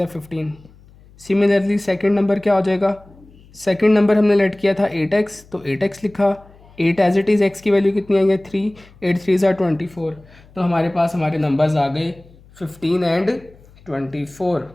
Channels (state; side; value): noise; left; hum, 26 dB below the sound